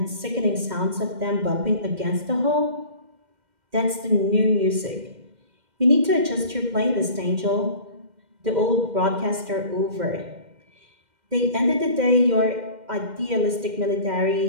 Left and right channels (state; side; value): late; left; 2.1 ms